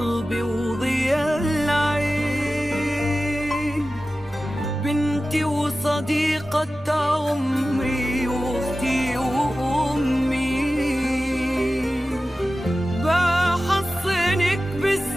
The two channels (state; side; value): normal; both; correlation 0.95